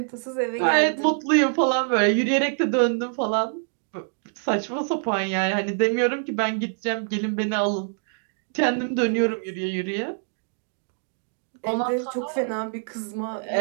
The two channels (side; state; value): left; silent; 58 dB below the other